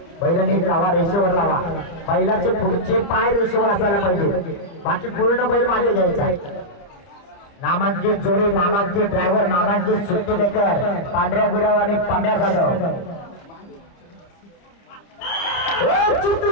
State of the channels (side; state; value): right; late; 30 ms